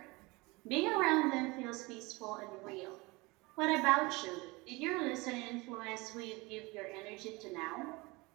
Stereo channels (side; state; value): left; quieter; 24.2 dB